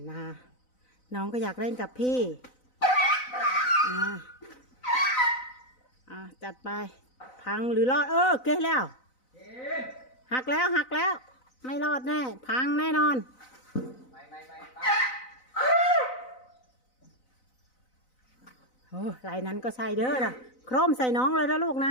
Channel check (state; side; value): late; right; 4.0 ms